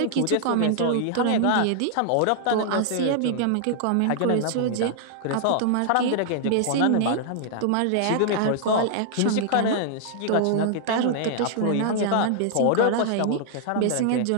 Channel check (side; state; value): both; different; correlation -0.01